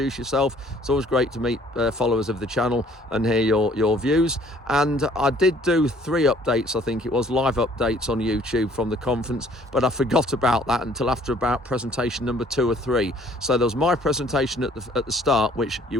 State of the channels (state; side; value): normal; both; correlation 0.57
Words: yourself. It's always great to meet followers of the channel and hear your views. And I did do 3 updates, I think it was, live updates on YouTube from the conference, but I forgot about that until after about presentation number 2 or 3. So there was my presentation at the start, which you